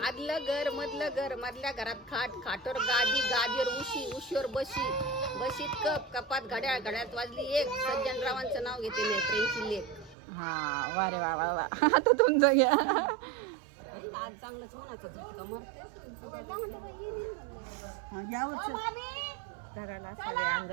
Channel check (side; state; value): left; drops out; at 10.2 s